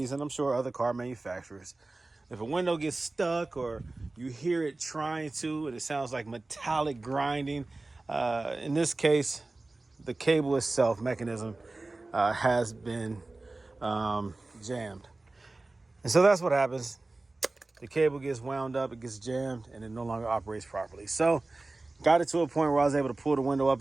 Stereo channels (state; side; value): quieter; left; 3.2 dB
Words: and I'm sure other car manufacturers, if a window gets stuck or you hear it trying to, and it sounds like metallic grinding, in this case, the cable itself, mechanism, has been jammed. And so that's what happens. The cable gets wound up, it gets jammed, and it no longer operates properly. So got it to a point where I was able to pull the window up